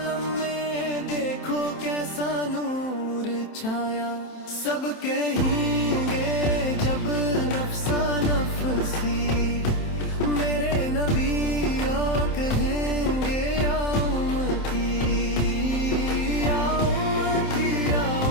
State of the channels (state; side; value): late; right; 27 ms